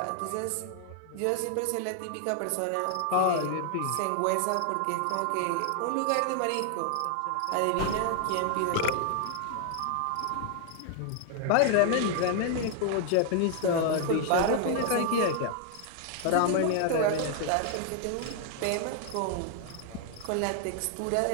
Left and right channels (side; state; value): both; different; correlation 0.00